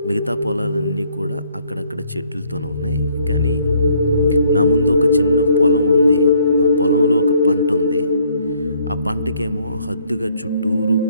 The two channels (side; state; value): both; inverted; correlation -0.66